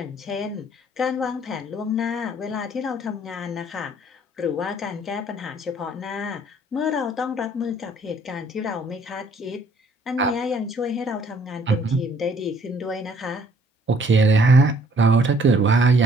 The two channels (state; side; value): normal; both; correlation 0.61